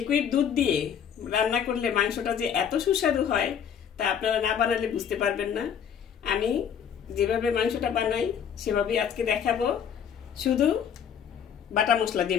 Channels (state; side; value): quieter; right; 8.1 dB